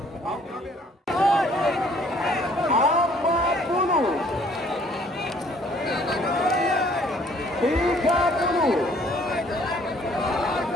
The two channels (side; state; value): both; normal; correlation 0.60